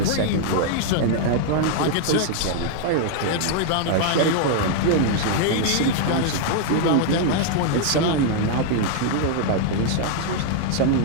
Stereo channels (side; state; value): both; different; correlation 0.00